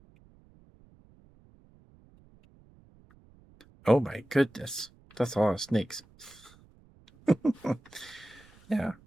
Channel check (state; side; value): noise; right; rumble, 27 dB below the sound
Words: Oh my goodness. That's a lot of snakes. Yeah.